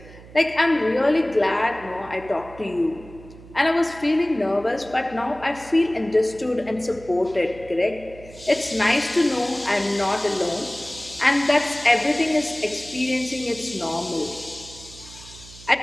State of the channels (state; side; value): noise; right; hum, 19 dB below the sound